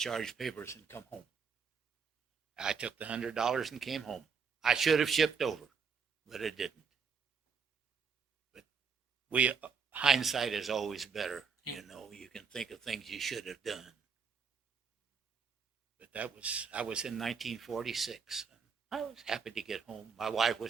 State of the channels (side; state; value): left; quieter; 5.8 dB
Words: papers and come home. I took the $100 and came home. I should have shipped over, but I didn't. But hindsight is always better. You know, you can think of things you should have done. But I was in 1946. I was happy to get home. My wife